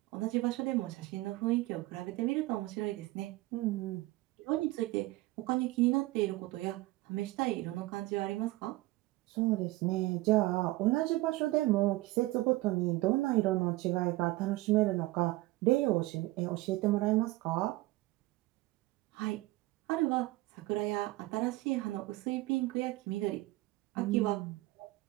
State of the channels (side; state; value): left; quieter; 19.3 dB